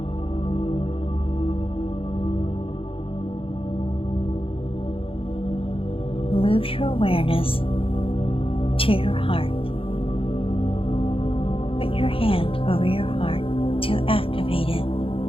Move your awareness to your heart. Put your hand over your heart to activate it.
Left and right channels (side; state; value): right; late; 0.27 ms